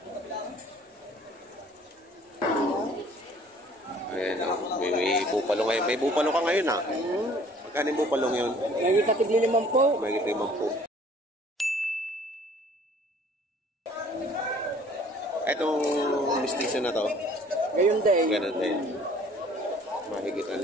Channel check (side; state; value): both; normal; correlation 0.54